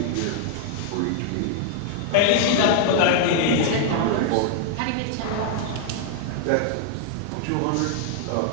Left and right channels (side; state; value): both; different; correlation 0.00